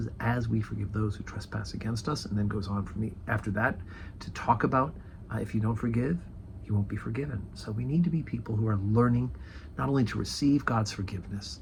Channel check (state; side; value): identical; both; correlation 1.00